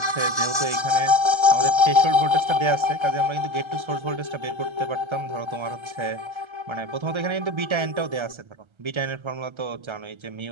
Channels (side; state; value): left; late; 1.3 ms